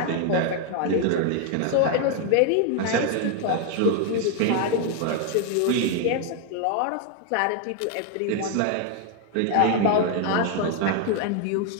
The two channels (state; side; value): different; both; correlation 0.00